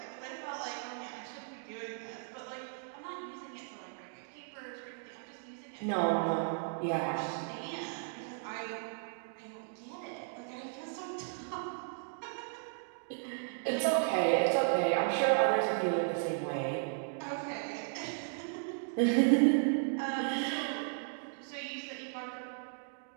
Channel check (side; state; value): left; silent; digital silence